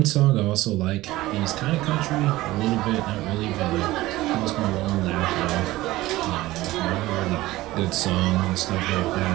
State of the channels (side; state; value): left; quieter; 17.7 dB